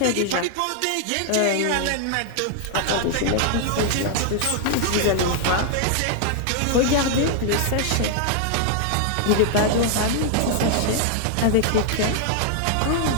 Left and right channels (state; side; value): different; both; correlation 0.00